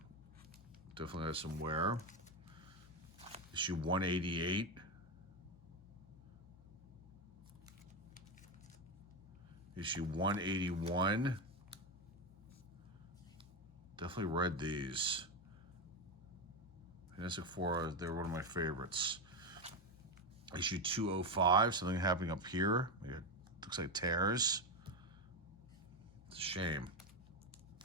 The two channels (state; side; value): normal; both; correlation 0.12